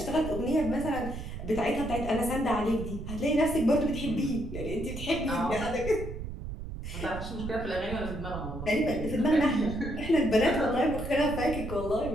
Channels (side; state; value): right; noise; rumble, 8 dB below the sound